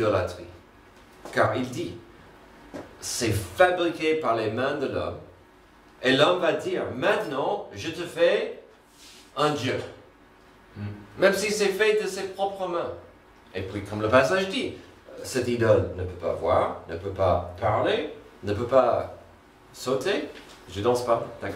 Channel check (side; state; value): both; identical; correlation 1.00